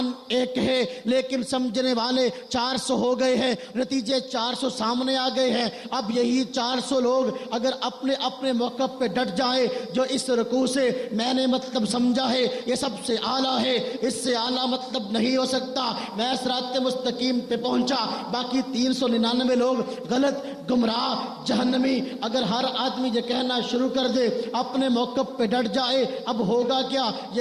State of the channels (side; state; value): both; identical; correlation 1.00